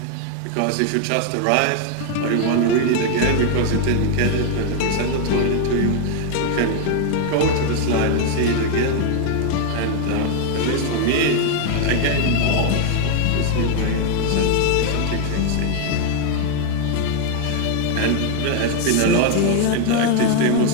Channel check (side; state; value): both; different; correlation 0.00